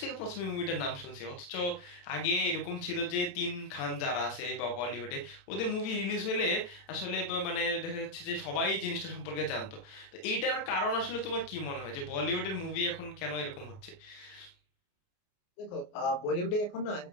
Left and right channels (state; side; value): late; right; 29 ms